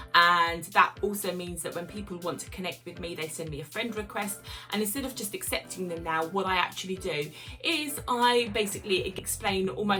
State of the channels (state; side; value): identical; both; correlation 1.00